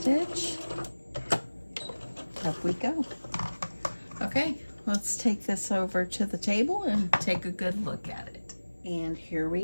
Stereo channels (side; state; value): both; inverted; correlation -1.00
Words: up we go. Okay, let's take this over to the table and take a good look at it. And here